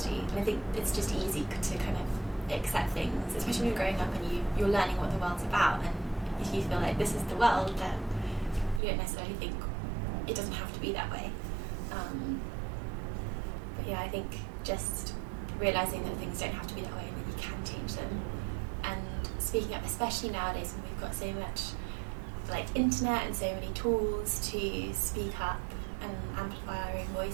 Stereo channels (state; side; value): drops out; left; at 8.8 s